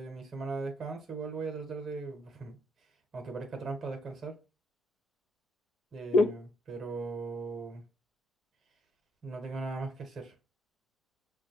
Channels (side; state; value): both; normal; correlation 0.72